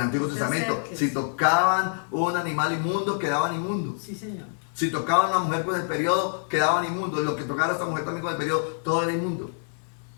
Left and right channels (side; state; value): right; silent; 58 dB below the other